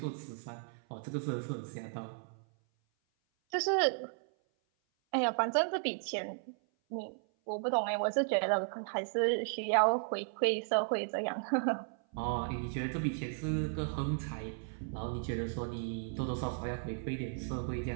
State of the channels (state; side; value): silent; left; 54 dB below the other